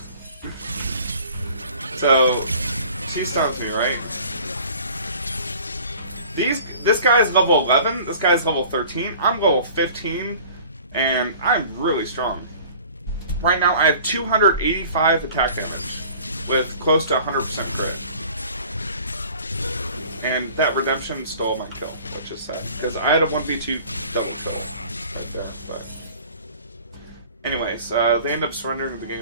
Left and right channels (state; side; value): inverted; both; correlation -0.47